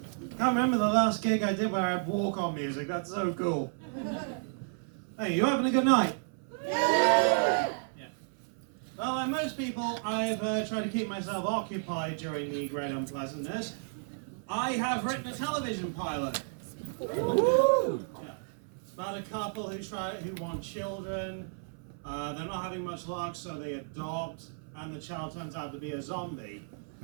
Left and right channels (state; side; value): silent; left; 56 dB below the other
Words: I can't remember the last gig I did where I had walk-on music. That's so cool. Hey, you having a good night? Yeah. Well, like most people, I've tried to keep myself occupied during the great unpleasantness. I have written a television pilot. Woo! Yeah. It's about a couple who want children. They're not having much luck, so they adopt, and the child turns out to be a zombie.